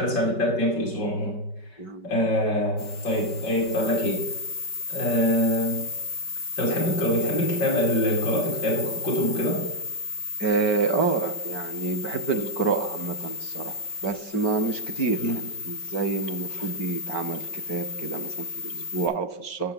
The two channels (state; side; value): late; right; 5.2 ms